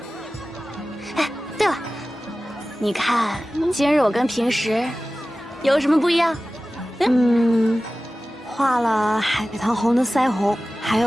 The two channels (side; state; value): both; normal; correlation 0.96